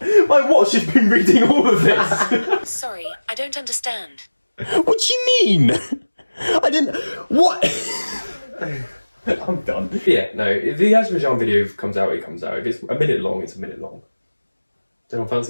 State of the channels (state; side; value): inverted; both; correlation -1.00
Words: My watch has been reading all of this. Sorry, I don't understand. What do you mean? I didn't. What? I'm done. Yeah, no. If the Azerbaijan video comes out, it comes out. If it's a minute long, it's a minute long. Don't